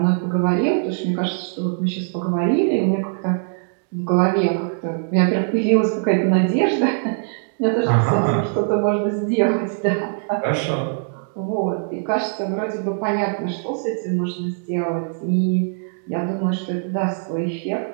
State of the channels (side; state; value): left; silent; digital silence